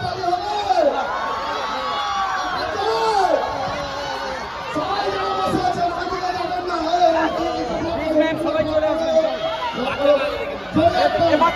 তালি হবে। সবাই যেন বসে আছে, ওইদিকে যাবেন না। সবাই চলে আসেন।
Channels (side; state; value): both; identical; correlation 1.00